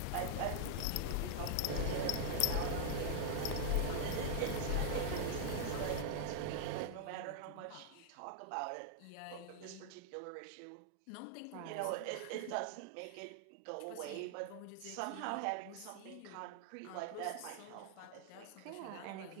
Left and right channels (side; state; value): both; different; correlation -0.01